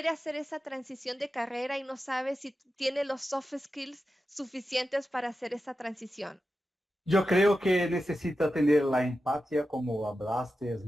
hacer esa transición de carrera y no sabe si tiene los soft skills suficientes para hacer esa transición? Yo creo que necesita tener la empatía, como hablaste, es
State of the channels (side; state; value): both; normal; correlation 0.91